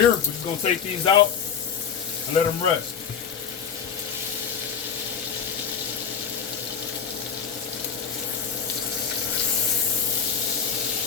we're just gonna take these out and let them rest.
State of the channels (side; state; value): right; quieter; 7.3 dB